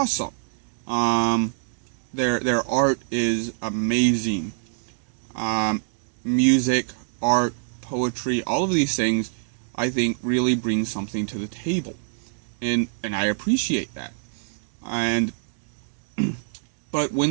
Their art is amazing. Music, art, poetry, all of these things, I think, really bring something to the table, and I appreciate that. And but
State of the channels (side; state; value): left; silent; digital silence